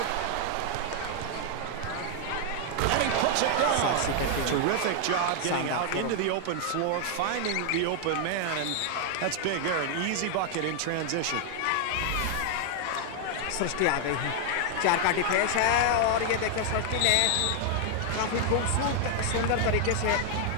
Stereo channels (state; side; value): different; both; correlation 0.00